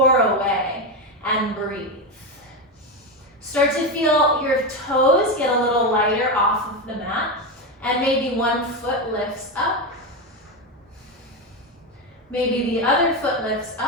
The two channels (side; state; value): both; normal; correlation 0.13